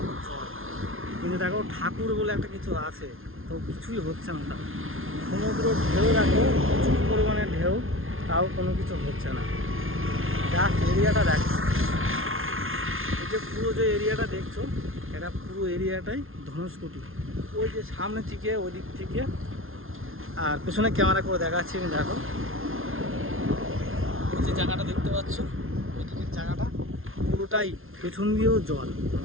জল, কিন্তু দেখো ঠাকুর বলে একটা কিছু আছে, তো কিছুই হচ্ছে না। তাও সমুদ্র ঢেউ দেখো, প্রচুর পরিমাণে ঢেউ, তাও কোনো কিছু হচ্ছে না। জাস্ট এরিয়াটা দেখো, এই যে পুরো যে এরিয়াটা দেখছো, এটা পুরো এরিয়াটাই ধনুষকোটি। ওই যে সামনে থেকে ওই দিক থেকে, আর পেছনে ক্যামেরা করে দেখাচ্ছি আমি। দেখো ওই যে জায়গাটা দেখতে পাচ্ছ, ওই দিকের জায়গাটা পুরোটাই পেছন দিয়েও জল।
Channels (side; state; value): left; late; 0.61 ms